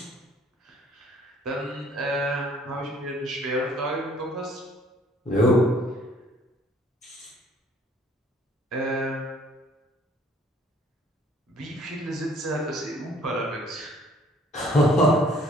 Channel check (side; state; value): both; normal; correlation 0.59